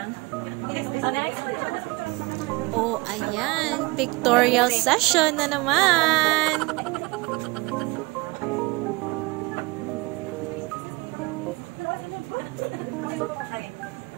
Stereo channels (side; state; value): left; quieter; 24.4 dB